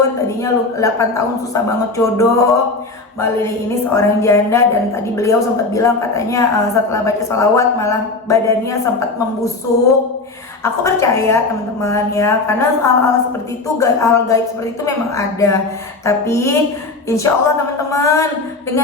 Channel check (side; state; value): right; quieter; 3.5 dB